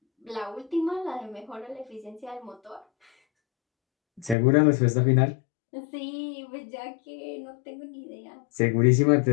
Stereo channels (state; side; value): drops out; right; at 4.4 s